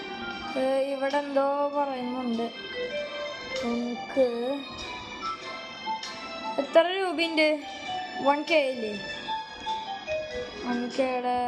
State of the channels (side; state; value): both; identical; correlation 1.00